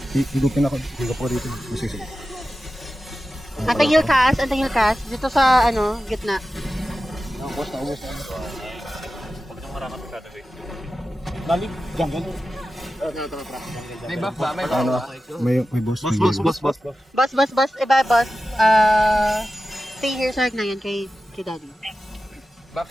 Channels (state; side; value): normal; both; correlation 0.93